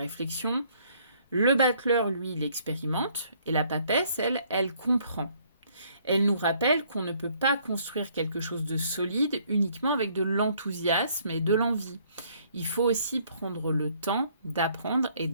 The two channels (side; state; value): both; inverted; correlation -0.64